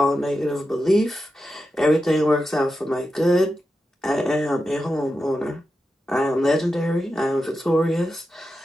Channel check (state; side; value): normal; both; correlation 0.90